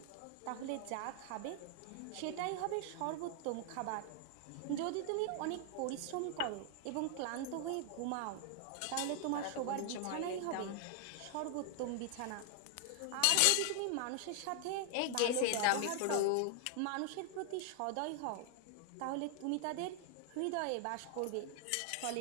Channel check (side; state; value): both; different; correlation 0.00